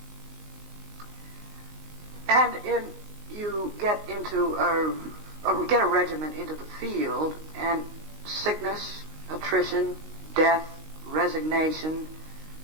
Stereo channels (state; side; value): late; left; 19 ms